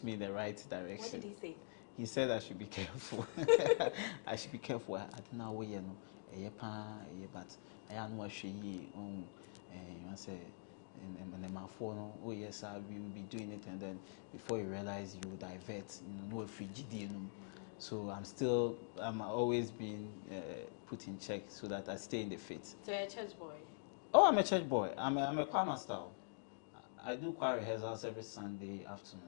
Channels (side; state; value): right; silent; digital silence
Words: me in the right direction. What did he say? He said I should be careful. I should be careful. I don't know where but I know what she you say in the phone. Oh yes, sir, we will be doing it, and then before you realize, you divert. No frigid. So I'm always being put in check so that I stay in the faith. So you're a church boy. Oh, I'm a church boy. I'm a choir master. I do choir rehearsals every Sunday